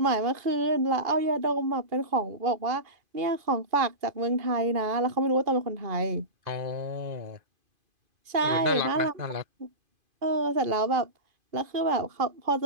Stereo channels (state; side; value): late; left; 2.5 ms